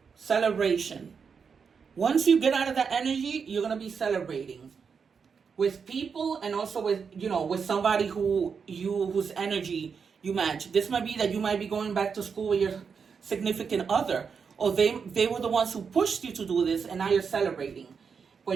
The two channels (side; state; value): left; quieter; 6.0 dB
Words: celebration. Once you get out of that energy, you're going to be celebrating with people and also with, with somebody whose energy you match. This might be that you might be going back to school with your significant other, or they were the ones who pushed you to do this, and now you're celebrating.